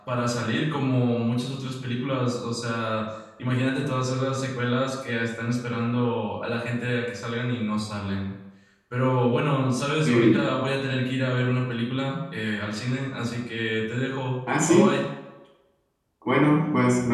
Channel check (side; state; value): both; identical; correlation 1.00